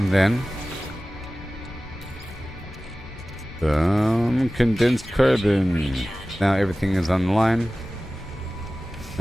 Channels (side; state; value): both; normal; correlation 0.97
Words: then some condensed carbon. Now everything is on the line.